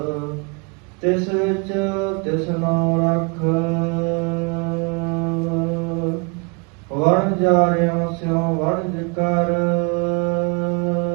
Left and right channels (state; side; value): quieter; left; 33.0 dB